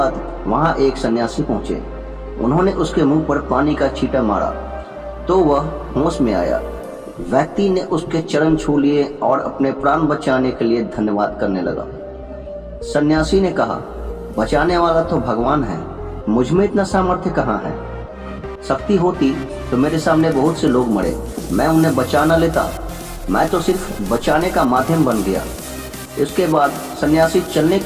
वहां एक सन्यासी पहुंचे। उन्होंने उसके मुंह पर पानी का छींटा मारा तो वह होश में आया। व्यक्ति ने उसके चरण छू लिए और अपने प्राण बचाने के लिए धन्यवाद करने लगा। सन्यासी ने कहा, बचाने वाला तो भगवान है, मुझ में इतना सामर्थ्य कहाँ है। शक्ति होती तो मेरे सामने बहुत से लोग मरे, मैं उन्हें बचा न लेता। मैं तो सिर्फ बचाने का माध्यम बन गया। इसके बाद सन्यासी चलने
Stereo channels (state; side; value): identical; both; correlation 1.00